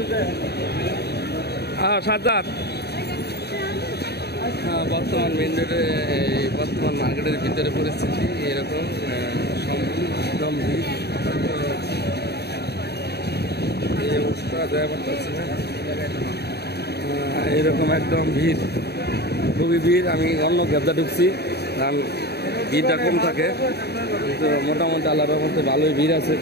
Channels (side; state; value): right; late; 0.48 ms